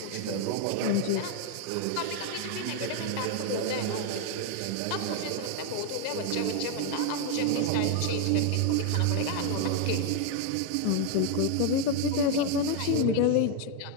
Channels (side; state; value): both; different; correlation 0.01